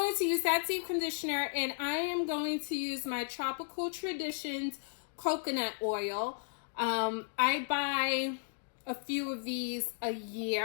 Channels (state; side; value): silent; right; digital silence